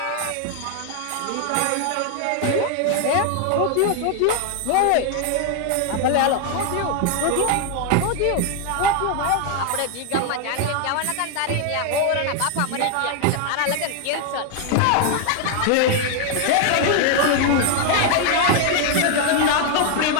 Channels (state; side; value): different; both; correlation 0.00